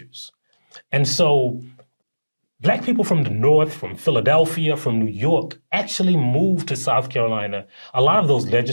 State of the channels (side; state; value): both; inverted; correlation -1.00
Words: And so black people from the North, from Philadelphia, from New York, actually moved to South Carolina. A lot of those